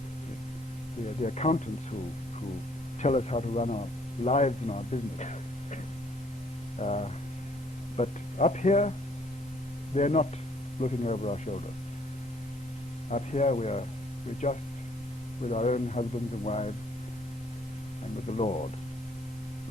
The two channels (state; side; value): normal; both; correlation 0.62